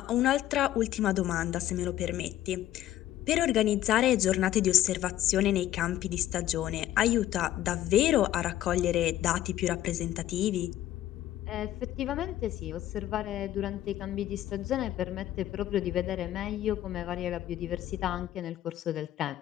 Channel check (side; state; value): right; quieter; 13.0 dB